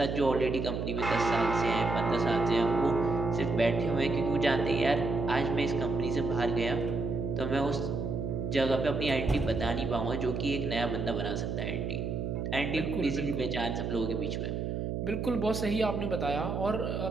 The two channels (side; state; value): right; noise; hum, 2 dB below the sound